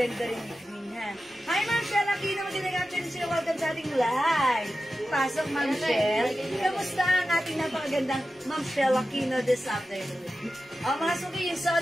rin ni Queen, ha? Hi, Ma'am Shell! Aquino, mag-inagachan sila. Welcome sa ating live. Pasok, Ma'am Shell. Kamusta ang ating napakagandang Ma'am Shell Aquino this afternoon? Mga suki, yung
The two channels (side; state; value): both; normal; correlation 0.93